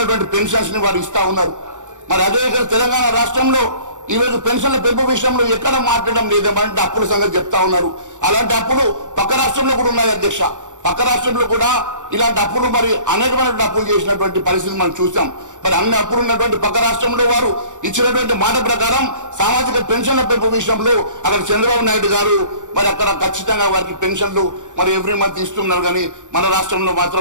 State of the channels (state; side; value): late; left; 0.86 ms